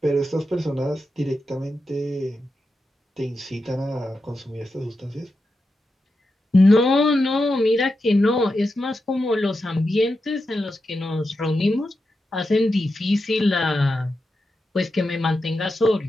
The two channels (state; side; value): normal; both; correlation 0.88